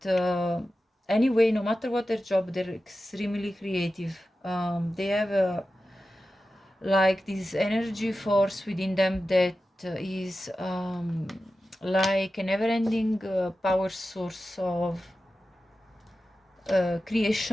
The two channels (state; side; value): normal; both; correlation 0.93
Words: anyway, no matter what their job, they're extremely creative. They have like this energy force within them that is like a never-ending power source of